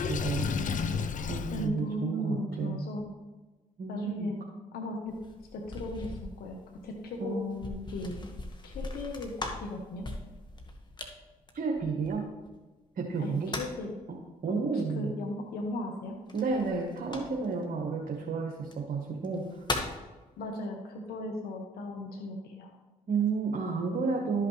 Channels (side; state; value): both; normal; correlation 0.57